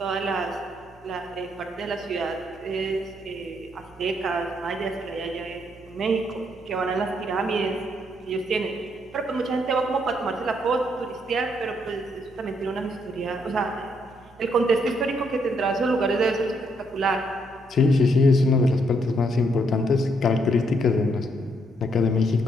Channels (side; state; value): both; normal; correlation 0.73